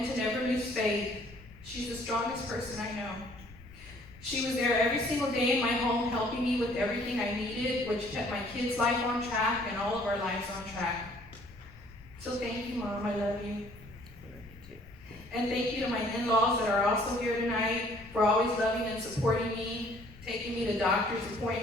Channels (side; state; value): left; noise; rumble, 20 dB below the sound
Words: to never lose faith. She's the strongest person I know. She was there every single day in my home, helping me with everything I needed, which kept my kids' life on track and all of our lives on track. So thank you, Mom. I love you. And thank you to my in-laws that are also here tonight for always loving and supporting me, taking me to doctor's